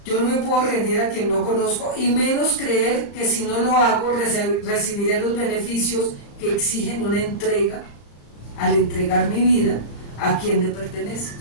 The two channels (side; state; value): right; late; 35 ms